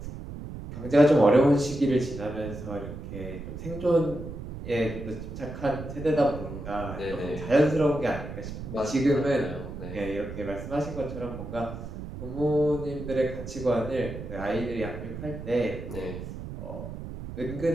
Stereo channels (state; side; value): noise; right; rumble, 9 dB below the sound